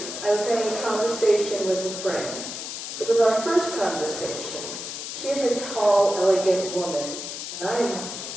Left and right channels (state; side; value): noise; left; hiss, 7 dB below the sound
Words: I was having a conversation with a friend. It was our first conversation. She is a tall, elegant woman, and I am,